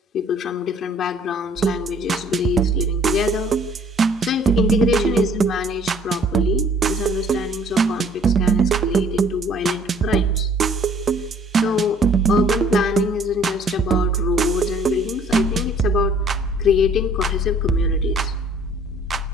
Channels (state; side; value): normal; both; correlation 0.57